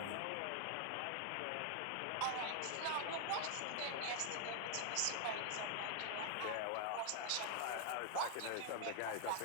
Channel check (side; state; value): both; different; correlation 0.00